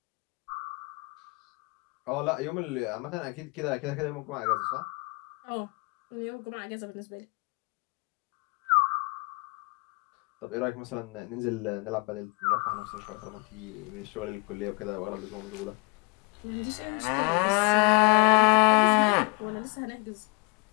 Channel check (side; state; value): right; quieter; 30.7 dB